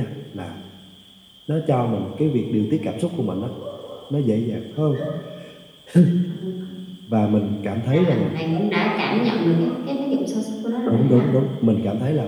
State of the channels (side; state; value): both; identical; correlation 1.00